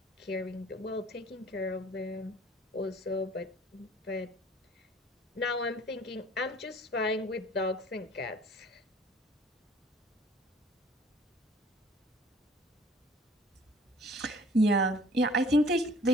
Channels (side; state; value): both; normal; correlation 0.53